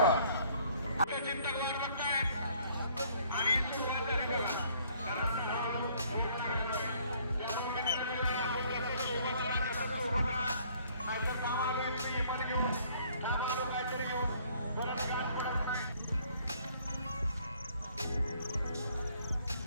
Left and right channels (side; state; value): both; inverted; correlation -0.61